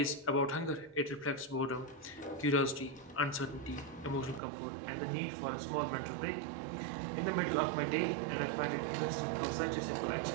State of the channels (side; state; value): left; drops out; at 4.4 s